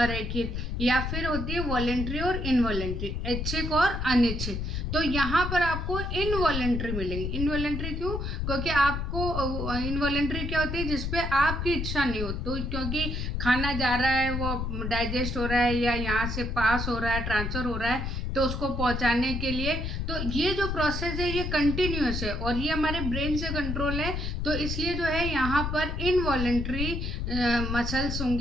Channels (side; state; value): left; noise; rumble, 3 dB below the sound